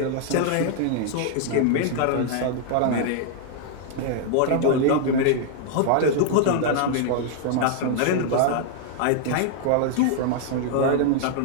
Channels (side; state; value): both; different; correlation -0.01